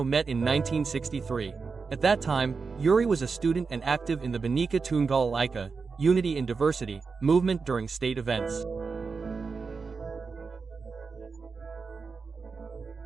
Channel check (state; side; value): quieter; left; 4.9 dB